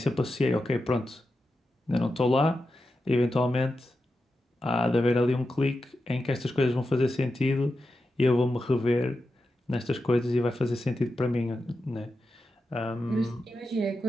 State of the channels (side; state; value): both; normal; correlation 0.90